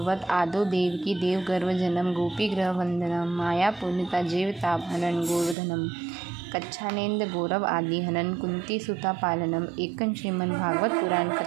आदो देवकी देव गर्भ जन्म गोपी ग्रह वंदनम माया पूर्णिता जीव तापहरण गोवर्धनम कच्छानेन्द्र गौरव आदि हनन कुंती सुता पालनम एकं श्रीमद् भागवत पुराण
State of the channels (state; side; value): drops out; left; at 5.6 s